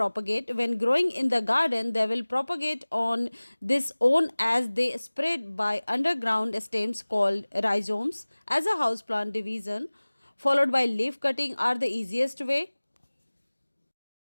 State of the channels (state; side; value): inverted; both; correlation -1.00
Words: When growing in the garden, they will propagate on this own as they spread by underground stems called rhizomes. As a houseplant division, followed by leaf cutting are the easiest way.